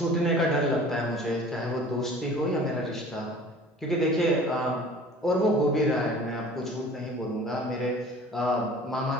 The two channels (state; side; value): normal; both; correlation 0.46